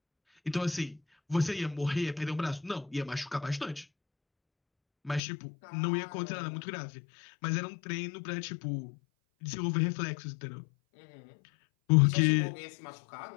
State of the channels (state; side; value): drops out; right; at 5.2 s